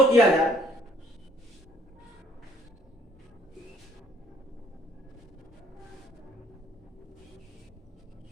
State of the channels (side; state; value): both; normal; correlation 0.60